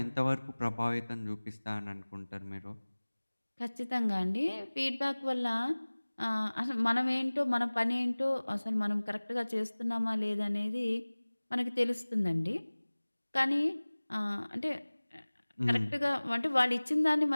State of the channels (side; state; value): both; inverted; correlation -1.00